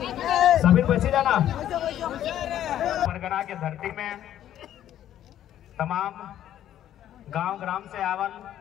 सभी बची जाना। परगना की धरती में तमाम गांव ग्राम से आवल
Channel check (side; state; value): right; quieter; 11.5 dB